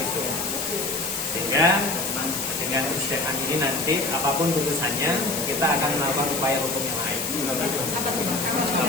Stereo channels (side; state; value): left; noise; hiss, 3 dB below the sound